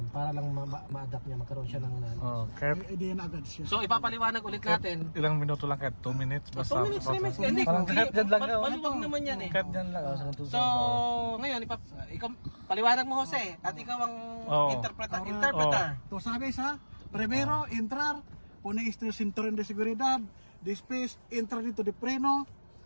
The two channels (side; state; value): both; inverted; correlation -1.00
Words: para lang ma-adapt niya, magkaroon siya ng knowledge. Idea na agad siya. So ipapaliwanag ulit natin. Ilang minuto lang kahit 2 minutes basta. 2 minutes, 3 minutes. Hindi, maluwag naman yan eh. Kahit dyan lang. So ngayon, ikaw, paliwanag mo Jose at ikaw ang interpreter. To sabi sa, primero, entrar, pone este cinturón de seguridad, después, entrar dito de freno,